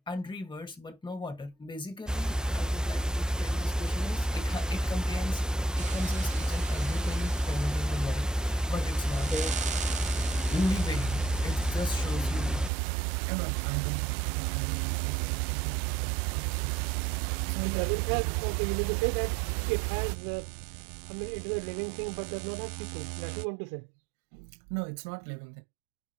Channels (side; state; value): left; drops out; at 12.7 s